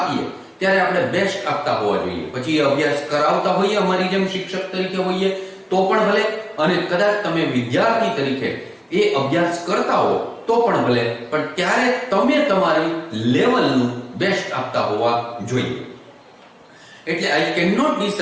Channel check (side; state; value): both; identical; correlation 1.00